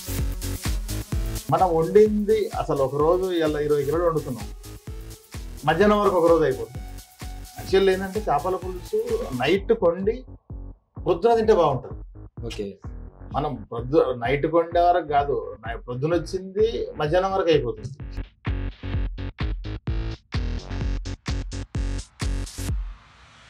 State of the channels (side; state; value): both; identical; correlation 1.00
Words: మనం వండింది అసలు ఒక రోజు ఇలా 20 కిలోలు వండుతున్నాం, మధ్యాహ్నం వరకు ఒక రోజు అయిపోతుంది. యాక్చువల్లీ ఏంటంటే చేపల పులుసు నైట్ కొండి పొద్దున తింటే బాగుంటుంది. ఓకే, మనం నైట్ కొండే వరకు కాదు, పొద్దున వచ్చింది మధ్యాహ్నం వరకు అయిపోతుంది.